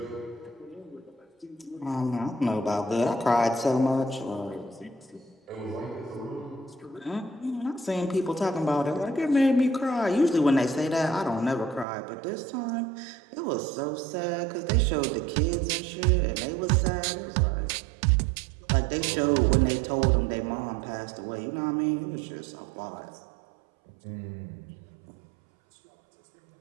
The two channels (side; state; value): left; drops out; at 11.9 s